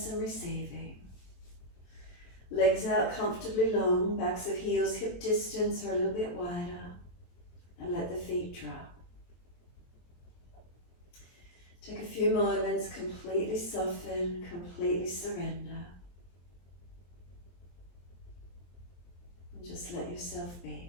and receiving. Legs out comfortably long, backs of heels hip distance or a little bit wider, and let the feet drop. Take a few moments, completely soften, completely surrender. And just let yourself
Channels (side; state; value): right; late; 23 ms